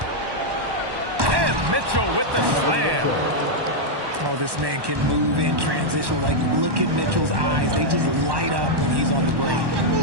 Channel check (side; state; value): left; late; 1.1 ms